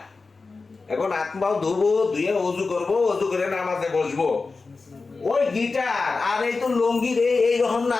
এখন আত্মাও ধুবো, ধুয়ে অজু করবো, অজু করে নামাজে বসবো। ওই গিটার আর এই তো লঙ্গি রে, এই রকম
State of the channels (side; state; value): right; quieter; 4.1 dB